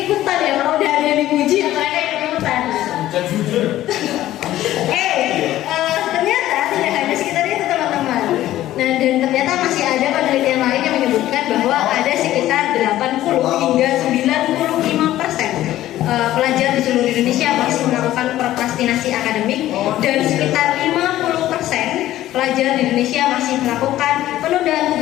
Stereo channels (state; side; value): quieter; right; 14.1 dB